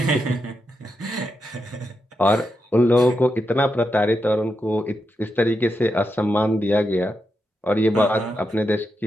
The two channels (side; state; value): both; normal; correlation 0.86